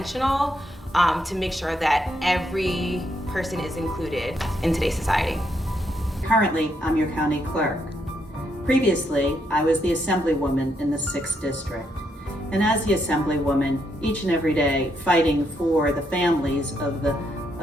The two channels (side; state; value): both; normal; correlation 0.77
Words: to make sure that every person is included in today's society. Currently, I'm your county clerk. Previously, I was the assemblywoman in the 6th district. And as the assemblywoman, each and every day fighting for the families